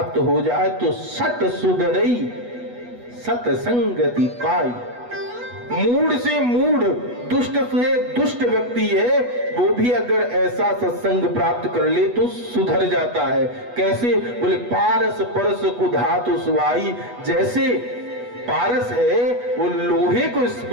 हो जाए तो सत सुधरई सत्संगति पाई। मूढ़ से मूढ़, दुष्ट से दुष्ट व्यक्ति है, वो भी अगर ऐसा सत्संग प्राप्त कर ले तो सुधर जाता है। कैसे? बोले पारस परस को धातु सुहाई। जैसे पारस है वो लोहे को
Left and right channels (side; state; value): left; late; 8.2 ms